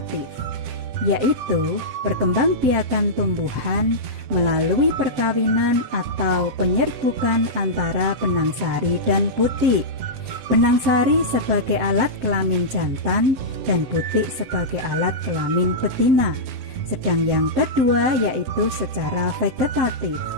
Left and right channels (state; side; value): late; left; 7.8 ms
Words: yaitu perkembangbiakan tumbuhan melalui perkawinan atau penyerbukan antara benang sari dan butik. Benang sari sebagai alat kelamin jantan dan butik sebagai alat kelamin betina. Sedang yang kedua yaitu secara vegetatif,